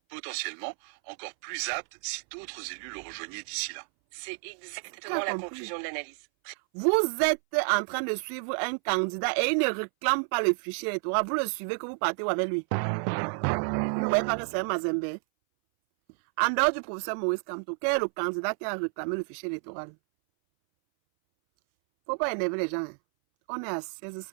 potentiellement encore plus apte si d'autres élus le rejoignaient d'ici là. C'est exactement la conclusion de l'analyse. Vous êtes en train de suivre un candidat et il ne réclame pas le fichier électoral. Vous le suivez que vous partez avec lui. Vous ne voyez pas que c'est un Mazembe. En dehors du professeur Maurice Kamto, quel est le candidat qui a réclamé le fichier électoral? Faut pas énerver les gens. Hein. On est à 16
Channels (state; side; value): silent; left; 58 dB below the other